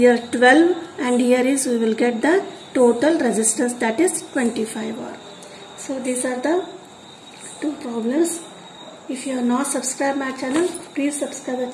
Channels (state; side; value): identical; both; correlation 1.00